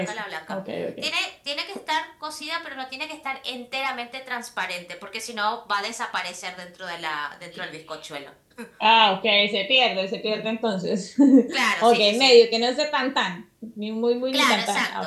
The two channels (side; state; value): both; identical; correlation 1.00